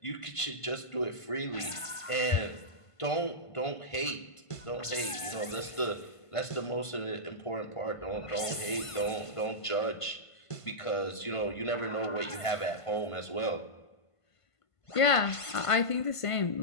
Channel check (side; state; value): right; late; 1.5 ms